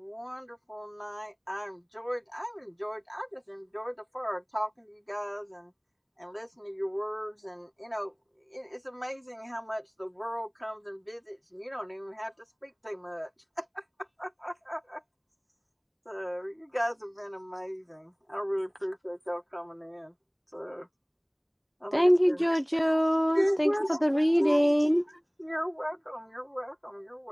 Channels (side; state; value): both; identical; correlation 1.00